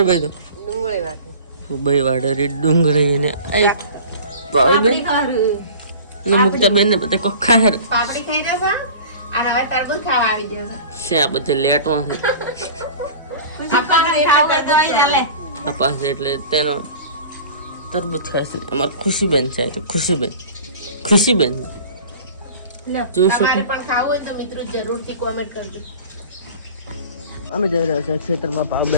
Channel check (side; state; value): both; inverted; correlation -0.40